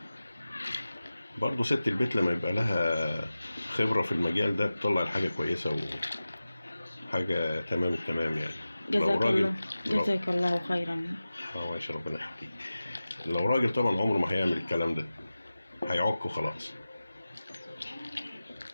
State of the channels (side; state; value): both; inverted; correlation -0.95